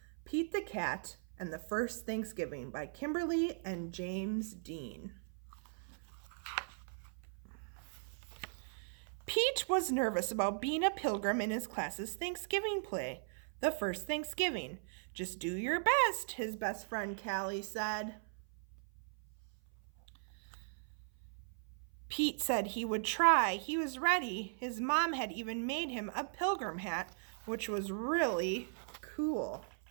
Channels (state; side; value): silent; left; 52 dB below the other